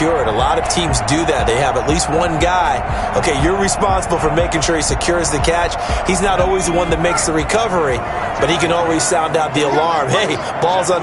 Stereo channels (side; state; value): both; identical; correlation 1.00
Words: A lot of teams do that. They have at least one guy. Okay, you're responsible for making sure he secures the catch. He's not always the one that makes the recovery, but he can always sound out the alarm. Hey, ball's on